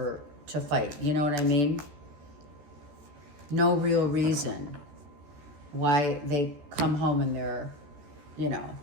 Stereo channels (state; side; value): late; left; 14 ms